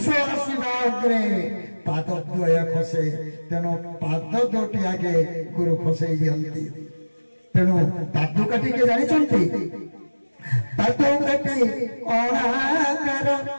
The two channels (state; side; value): inverted; both; correlation -1.00